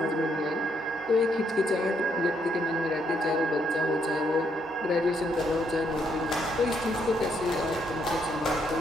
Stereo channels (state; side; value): normal; both; correlation 0.73